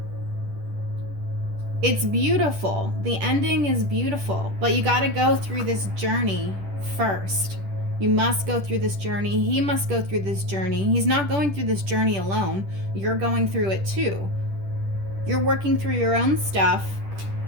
It's beautiful. The ending is beautiful, but you got to go through this journey first. You must go through this journey. He must go through this journey. He's not going through this journey alone. You're going through it too. You're working through your own stuff,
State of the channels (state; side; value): late; left; 10 ms